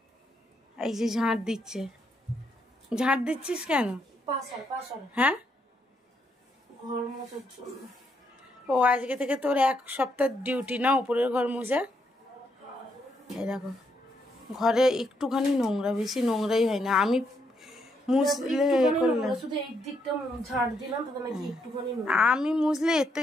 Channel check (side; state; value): both; normal; correlation 0.76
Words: এই যে ঝাঁট দিচ্ছে। ঝাঁট দিচ্ছিস কেন? হ্যাঁ ঘর মোছার জন্য। ও আজকে থেকে তোর 1 সপ্তাহ ডিউটি না উপরের ঘর মোছা। এই দেখো ঘরে একটুখানি নোংরা, বেশি নোংরাই হয় না। আমি মুছলে আমি মুছলে এর